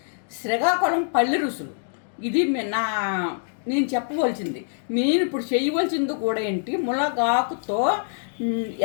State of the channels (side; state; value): right; silent; digital silence